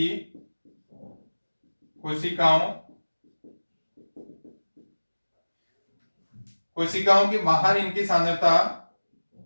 कोशिकाओं के बाहर इनकी सांद्रता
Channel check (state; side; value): inverted; both; correlation -1.00